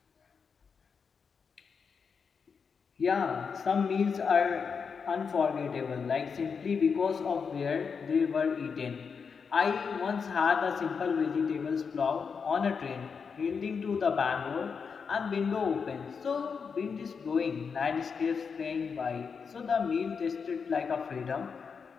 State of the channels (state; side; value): quieter; right; 5.8 dB